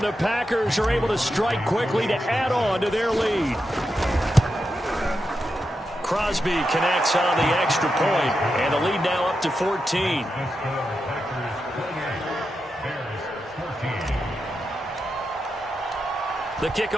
the Packers are able to strike quickly to add on to their lead. Crosby connects on the extra point, and the lead now up to 14. The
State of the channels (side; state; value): both; normal; correlation 0.87